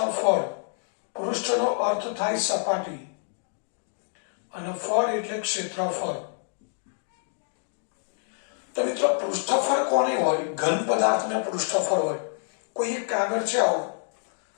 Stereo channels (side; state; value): right; silent; digital silence